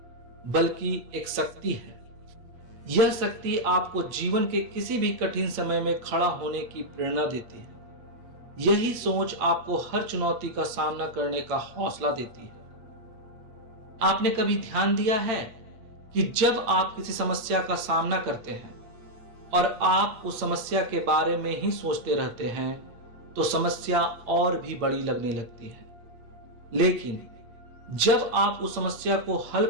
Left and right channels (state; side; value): late; left; 8.7 ms